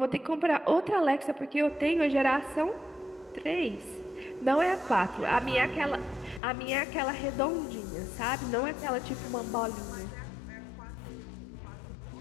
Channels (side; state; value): right; drops out; at 6.4 s